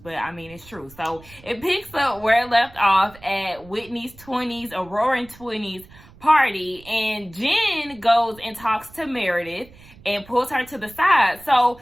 I mean, it's true. So it picks up where it left off at Whitney's 20s, a roaring 20s party, and Jen goes and talks to Meredith and pulls her to the side. So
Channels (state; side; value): noise; right; rumble, 23 dB below the sound